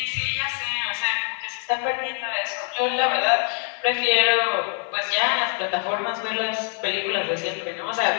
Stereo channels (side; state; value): right; quieter; 37.8 dB